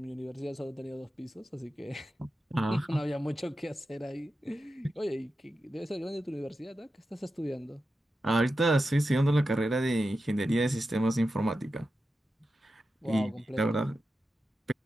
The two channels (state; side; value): normal; both; correlation 0.91